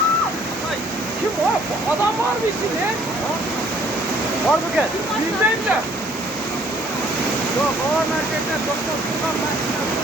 Kim o? Adam var mı içinde? Var mı gel? Yüzdeyim de. Yok, o merkezden doktor Sultan ben.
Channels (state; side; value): normal; both; correlation 0.60